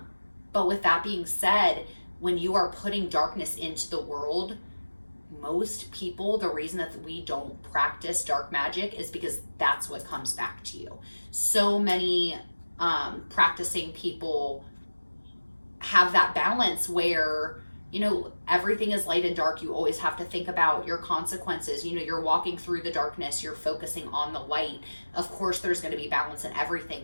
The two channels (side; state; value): both; inverted; correlation -1.00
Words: with that being said, when you are putting darkness into the world, most people, the reason that we don't practice dark magic is because that's what comes back to you. So many practicing people have that balance where, everything is light and dark. You always have to think about your consequences. You're walking through the darkness, you're focusing on the light. Of course, there's going to be balance in